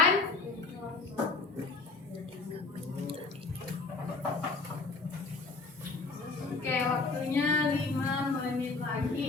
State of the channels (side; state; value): right; quieter; 3.9 dB